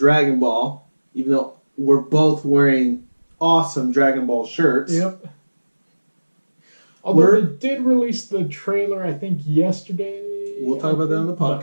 Ball, even though we're both wearing awesome Dragon Ball shirts. Yep. Although they did release the trailer, I think, yesterday. We'll talk about that on the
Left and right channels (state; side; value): inverted; both; correlation -1.00